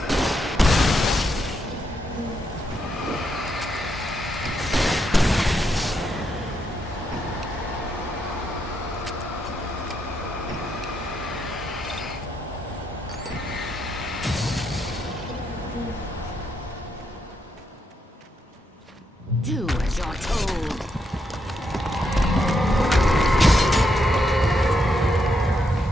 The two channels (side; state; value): both; normal; correlation 0.80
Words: Do as you're told.